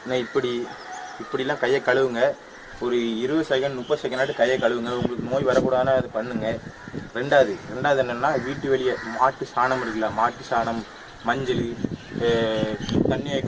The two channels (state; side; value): identical; both; correlation 1.00